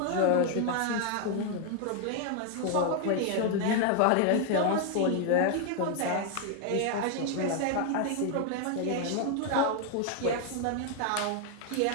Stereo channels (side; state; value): both; different; correlation 0.00